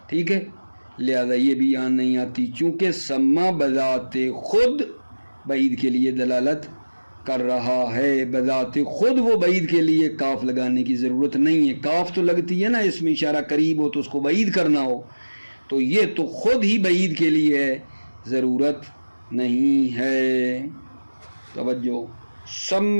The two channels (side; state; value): both; inverted; correlation -1.00